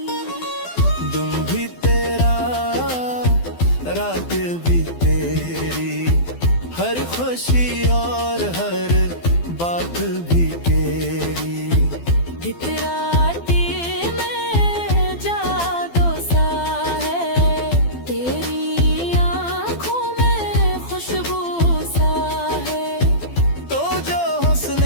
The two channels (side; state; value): right; late; 12 ms